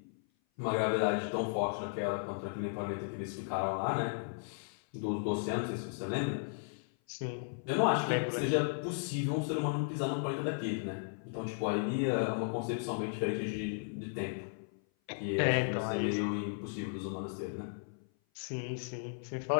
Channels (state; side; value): silent; right; 54 dB below the other